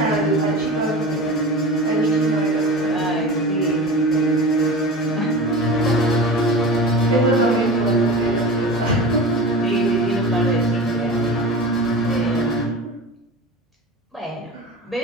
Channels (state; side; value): normal; both; correlation 0.31